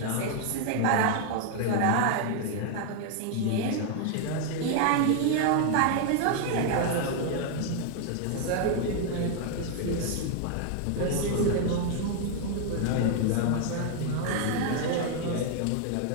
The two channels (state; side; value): different; both; correlation 0.00